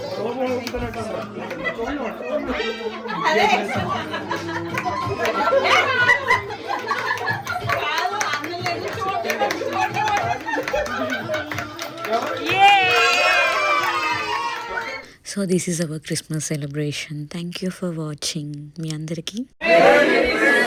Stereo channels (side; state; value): both; identical; correlation 1.00